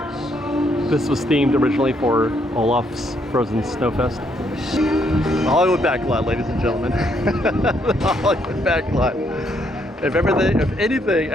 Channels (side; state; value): both; normal; correlation 0.72